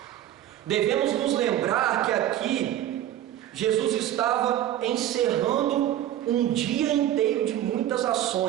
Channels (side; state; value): left; quieter; 12.3 dB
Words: Devemos nos lembrar que aqui Jesus estava encerrando um dia inteiro de muitas